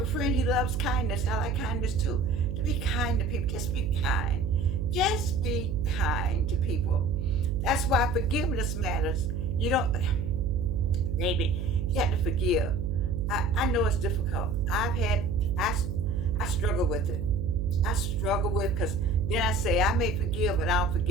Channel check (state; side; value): noise; right; hum, 3 dB below the sound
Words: a friend, he loves kindness. I like kindness too. To be kind to people. Just be kind. Just be kind to people. That's why forgiveness matters. You don't, baby, you have to forgive. I know it's difficult. I struggle with it. I struggle with because then I say I may forgive but I'll